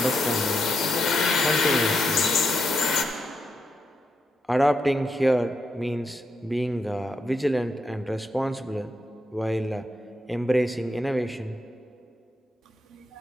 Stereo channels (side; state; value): both; normal; correlation 0.82